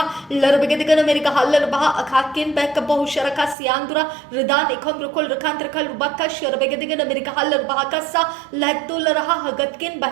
लरबेगतिगन America hauler बहा अखाकिन back बहु शरका से आंदुरा रदान एकम रखोल रखान रखाल रुबाका शरबेगतिगन America hauler bahaka सा लहतुल रहा हगतकिन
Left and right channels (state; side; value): drops out; left; at 3.6 s